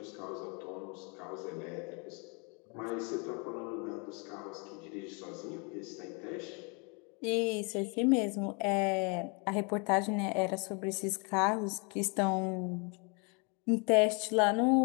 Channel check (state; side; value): quieter; right; 33.3 dB